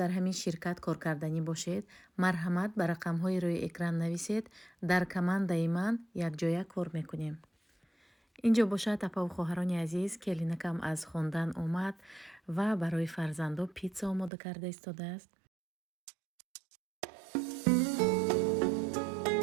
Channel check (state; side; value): drops out; left; at 14.3 s